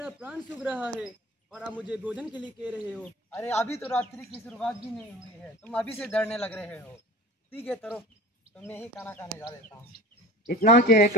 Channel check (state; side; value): normal; both; correlation 0.38